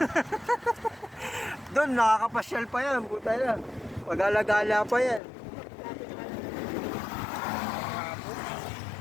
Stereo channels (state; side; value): drops out; right; at 5.2 s